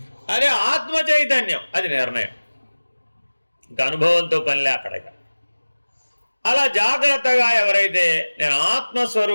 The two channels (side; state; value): both; inverted; correlation -1.00